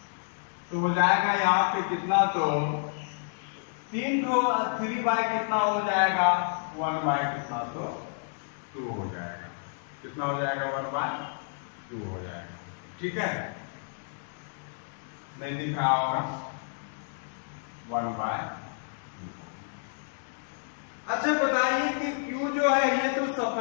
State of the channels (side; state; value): right; silent; digital silence